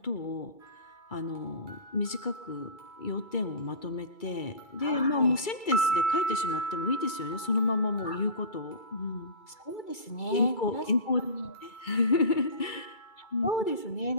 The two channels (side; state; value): right; late; 2.3 ms